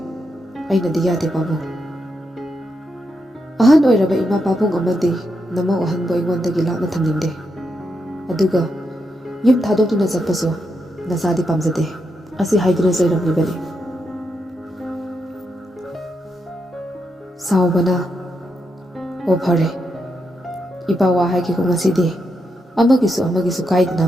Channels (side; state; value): both; normal; correlation 0.83